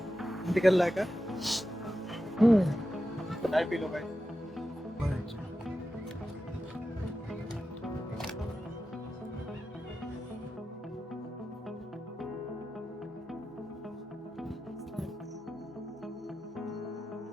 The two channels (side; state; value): both; normal; correlation 0.91